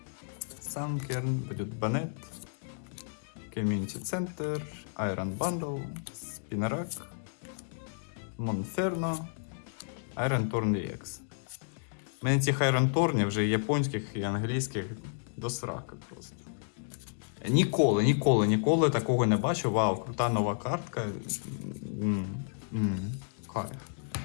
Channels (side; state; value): right; silent; digital silence